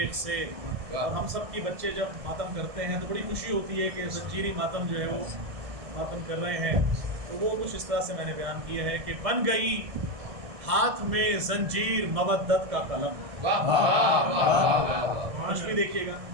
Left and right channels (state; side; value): late; left; 1.6 ms